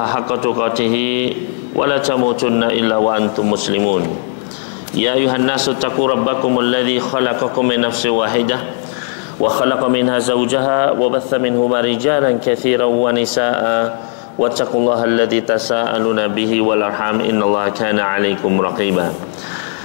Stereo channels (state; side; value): silent; right; 65 dB below the other